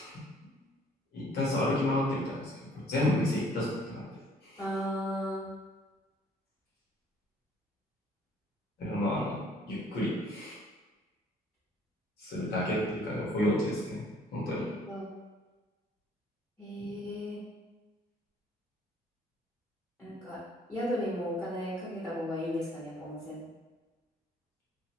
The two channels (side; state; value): both; normal; correlation 0.60